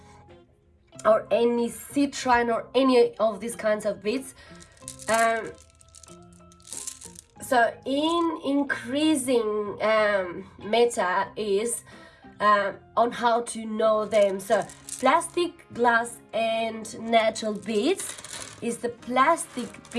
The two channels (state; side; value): identical; both; correlation 1.00